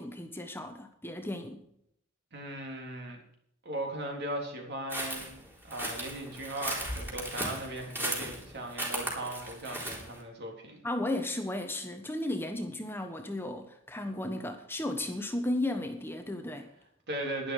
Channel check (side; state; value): both; normal; correlation 0.43